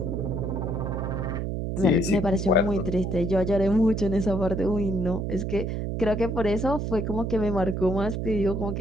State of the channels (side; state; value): right; noise; hum, 2 dB below the sound